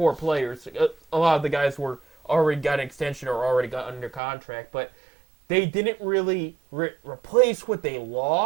players. A lot of the guys were already got an extension or already got under contract, but they didn't really replace what they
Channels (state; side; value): drops out; left; at 4.2 s